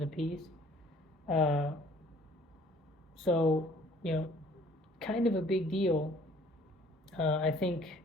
a piece. Uh, so, kind of a big deal. I think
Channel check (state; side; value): normal; both; correlation 0.56